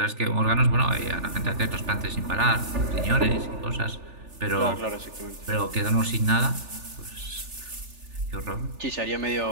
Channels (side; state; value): left; late; 3.4 ms